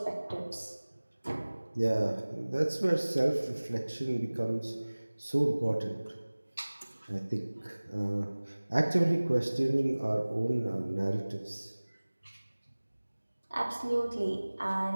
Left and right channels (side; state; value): both; inverted; correlation -1.00